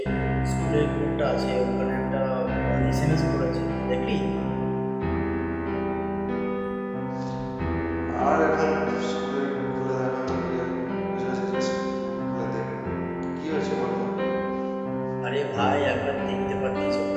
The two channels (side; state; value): both; identical; correlation 1.00